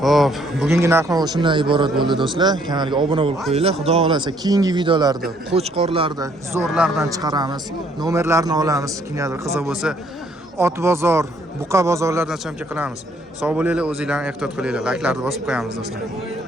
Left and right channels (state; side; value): normal; both; correlation 0.65